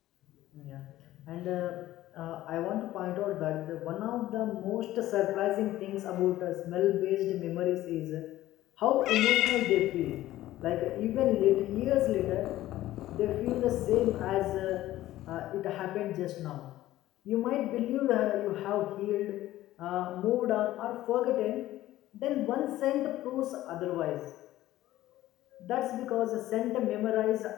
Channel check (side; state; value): right; quieter; 15.0 dB